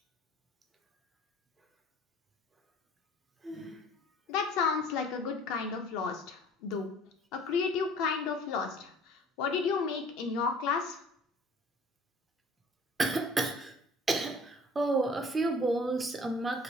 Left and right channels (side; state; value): both; normal; correlation 0.50